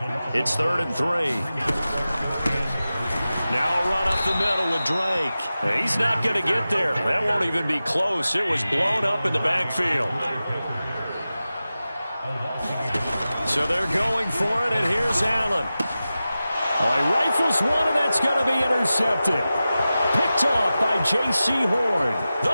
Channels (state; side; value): inverted; both; correlation -0.94